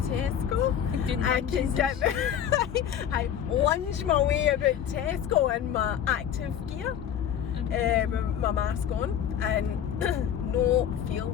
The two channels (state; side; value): quieter; right; 9.3 dB